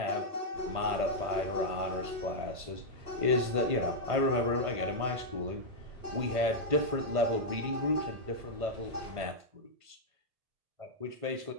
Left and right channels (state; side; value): late; left; 1.5 ms